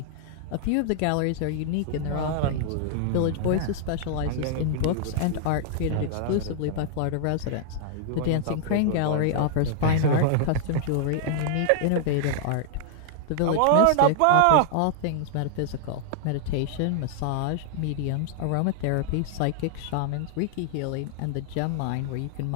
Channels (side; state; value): both; different; correlation -0.01